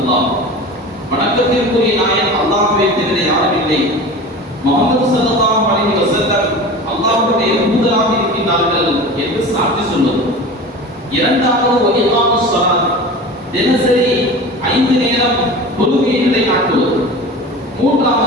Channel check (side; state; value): both; normal; correlation 0.34